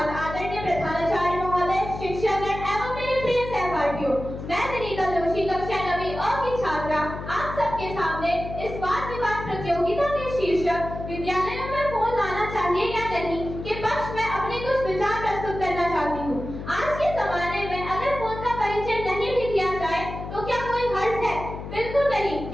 आदरणीय प्रधानाचार्य महोदय, शिक्षकगण एवं मेरे प्रिय सहपाठियों। मैं विनीता जोशी कक्षा 9वीं अ की छात्रा आप सबके सामने इस वाद विवाद प्रतियोगिता के शीर्षक विद्यालयों में फोन लाना चाहिए या नहीं के पक्ष में अपने कुछ विचार प्रस्तुत करना चाहती हूँ। आज के जमाने में अगर फोन का परिचय नहीं भी किया जाए तो क्या कोई हर्ज है? बिल्कुल नहीं,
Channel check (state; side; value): noise; left; hum, 9 dB below the sound